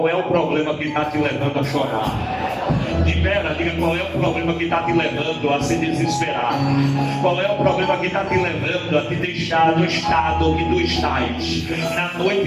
é o problema que está te levando a chorar? Libera, diga: qual é o problema que está te levando a se desesperar? Qual é o problema que está te levando a te deixar no estado que tu estás? Na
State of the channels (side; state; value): both; identical; correlation 1.00